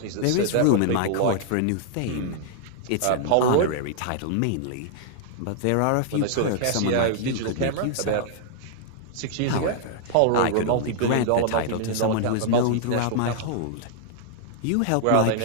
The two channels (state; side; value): different; both; correlation -0.01